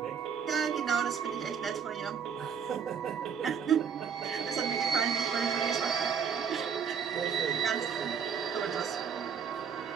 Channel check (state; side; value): quieter; left; 7.0 dB